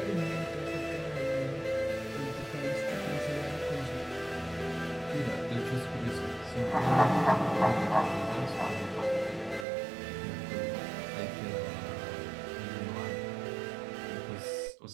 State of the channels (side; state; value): left; drops out; at 9.7 s